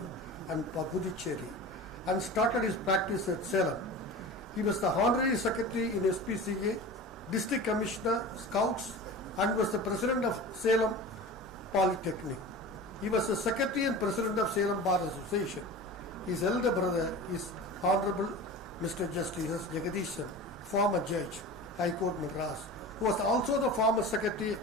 and Puducherry, and started his practice at Salem. He was the honorary secretary in SPCA, district commissioner, scouts, and was the president of Salem Polytechnic. He was the secretary and president of Salem Bar Association. His elder brother is Honorable Mr. Justice S. Jagadishan, former judge, High Court Madras, who was also the former secretary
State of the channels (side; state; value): both; normal; correlation 0.33